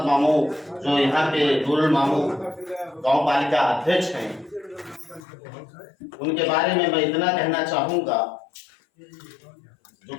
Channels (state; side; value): drops out; right; at 5.2 s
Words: मामू, जो यहाँ के नूरुल मामू गांव पालिका अध्यक्ष हैं, उनके बारे में मैं इतना कहना चाहूंगा जो